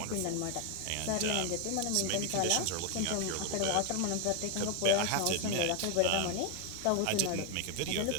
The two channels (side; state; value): both; different; correlation 0.01